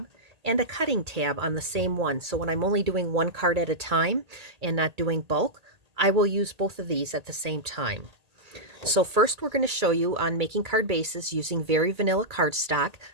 and a cutting tab on the same one. So when I'm only doing one card at a time and not doing bulk, I will use both of these at the same time. So first we're going to show you on making card bases using very vanilla cardstock.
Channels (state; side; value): late; left; 1.8 ms